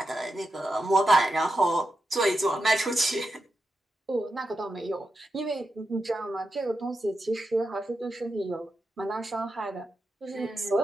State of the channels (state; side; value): normal; both; correlation 0.88